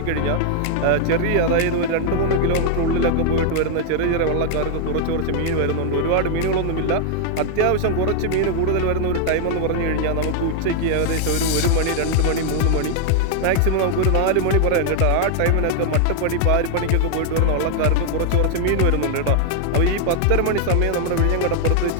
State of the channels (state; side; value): different; both; correlation 0.00